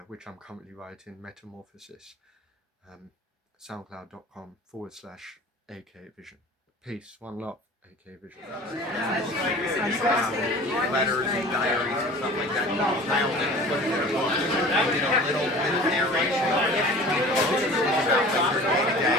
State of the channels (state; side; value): normal; both; correlation 0.42